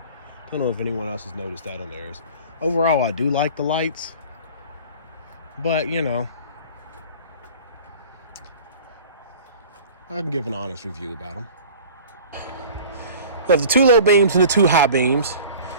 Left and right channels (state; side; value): inverted; both; correlation -0.42